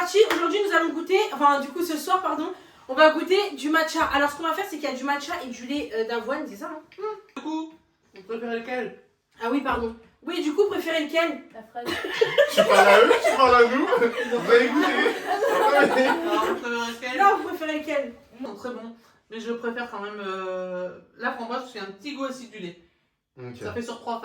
aujourd'hui nous allons goûter, enfin du coup ce soir pardon, on va goûter du matcha. Alors ce qu'on va faire c'est qu'il y a du matcha et du lait d'avoine, c'est ça hein? Du coup, vous préférez lequel? Ah oui pardon. Oui du coup préférez lequel? La fraise. Tu parles à eux, tu parles à nous. Vous avez goûté. Alors, vous préférez lequel? Non vous préférez lequel? Non, très bon. Mais je préfère quand même la framboise parce qu'il y a un petit goût acidulé. Ok. Ça fait sur 3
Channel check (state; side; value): identical; both; correlation 1.00